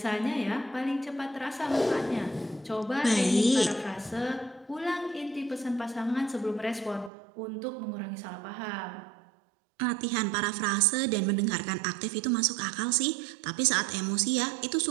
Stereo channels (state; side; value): drops out; left; at 7.1 s